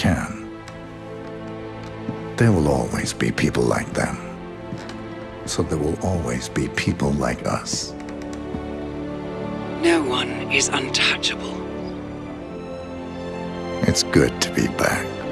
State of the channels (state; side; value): identical; both; correlation 1.00